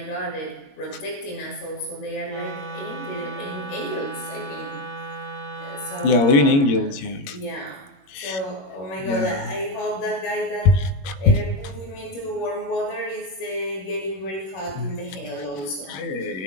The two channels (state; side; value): late; right; 21 ms